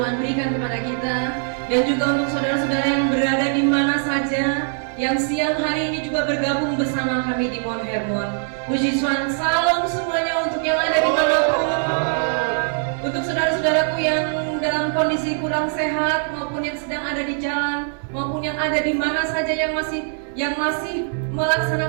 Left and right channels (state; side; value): silent; left; 58 dB below the other